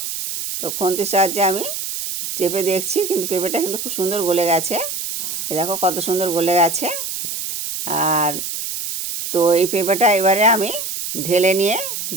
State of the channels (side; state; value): right; noise; hiss, 5 dB below the sound